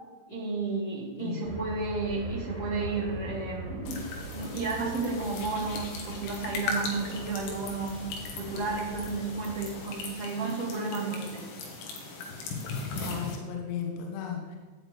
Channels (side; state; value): right; late; 19 ms